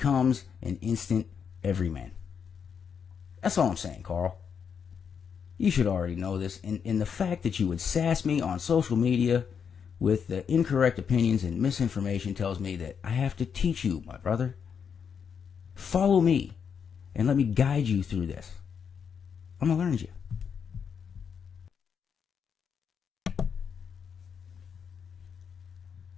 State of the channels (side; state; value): right; quieter; 6.9 dB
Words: an instant everyman. That's all I'm saying, Carl. You should already know this. And the fact that you would sass me on social media with the incorrect opinions and misinformation tells me that I have to teach you, my brother. Follow me and let me guide you through this. I'm going to learn you.